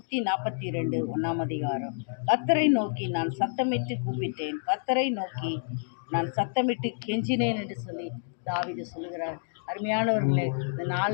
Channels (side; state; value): right; silent; digital silence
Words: 1ஆம் அதிகாரம். கர்த்தரை நோக்கி நான் சத்தமிட்டு கூப்பிட்டேன், கர்த்தரை நோக்கி நான் சத்தமிட்டு கெஞ்சினேன் என்று சொல்லி தாவீது சொல்லுகிறார். அருமையானவர்களே, இந்த